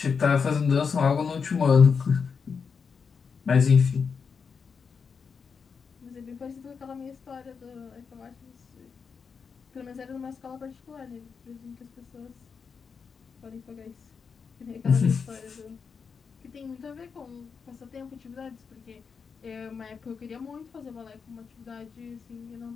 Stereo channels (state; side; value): quieter; right; 5.8 dB